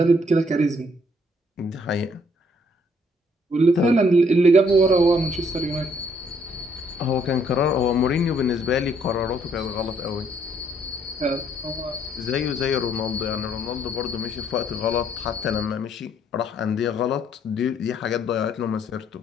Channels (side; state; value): both; normal; correlation 0.67